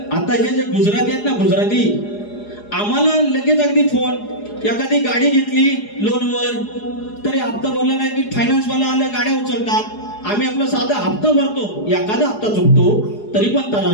आता हे जे गुजराती आहेत ना, गुजराती, आम्हाला लगेच अगदी फोन. एखादी गाडी घेतली लोनवर तरी हप्ता भरला नाही की फायनान्स वाला आलं, गाड्या उचलतात. आम्ही आपला साधा हप्ता भरतो, एखादा हप्ता चुकतो तरी पण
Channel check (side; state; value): right; late; 4.8 ms